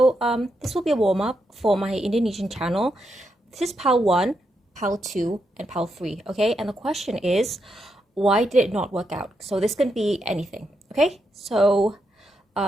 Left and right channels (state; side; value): normal; both; correlation 0.82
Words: will be a warm-up for my Indonesian channel. This is PAL 1, PAL 2, and PAL 3, okay? And the question is, why did it not work out? So this can be anything, okay?